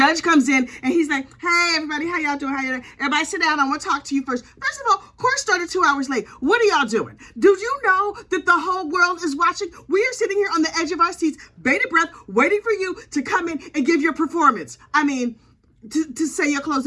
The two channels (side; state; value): both; identical; correlation 1.00